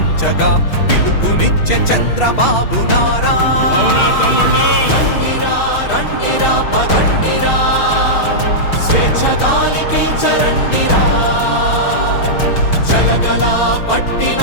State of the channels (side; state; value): right; late; 6.4 ms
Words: పిలుపునిచ్చే చంద్రబాబు నారా రండిరా రండిరా పదండిరా స్వేచ్ఛ గాలి పీల్చరండిరా జలగలా